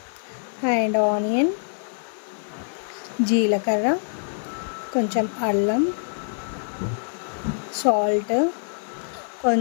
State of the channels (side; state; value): right; silent; 56 dB below the other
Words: అండ్ ఆనియన్, జీలకర్ర, కొంచెం అల్లం, సాల్ట్,